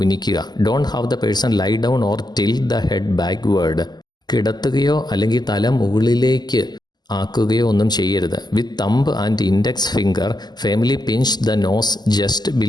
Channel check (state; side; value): late; right; 0.20 ms